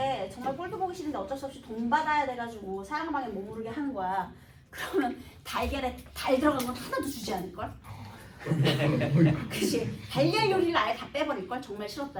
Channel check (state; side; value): identical; both; correlation 1.00